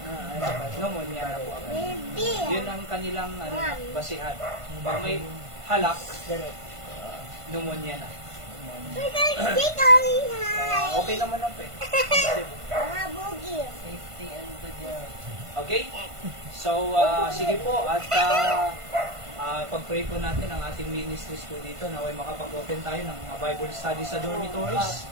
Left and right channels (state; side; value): late; left; 1.5 ms